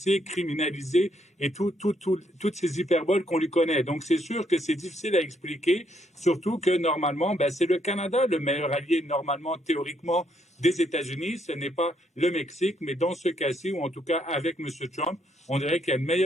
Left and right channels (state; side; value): normal; both; correlation 0.73